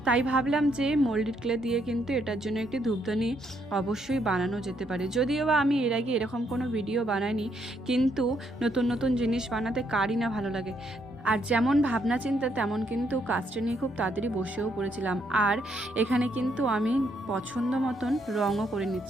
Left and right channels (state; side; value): normal; both; correlation 0.74